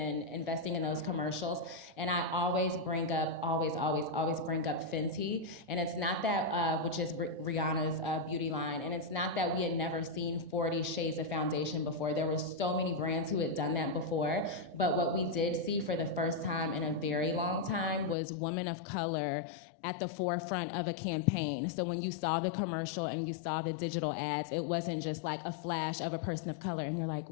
investing in those commercials? And I always bring up, always bring up Fenty. And it's not that, which is Rihanna's beauty line. And it's not that we had never seen 40 shades of foundation before. There were so many brands who had done that before. But what we did see for the first time in a very long time was women of color at the forefront of a campaign. So when you saw the commercial and you saw the digital ads, it wasn't just like a flash of a person of color and you're like,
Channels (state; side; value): drops out; right; at 18.2 s